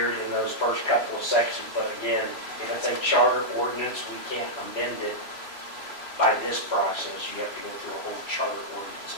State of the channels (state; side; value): late; right; 3.0 ms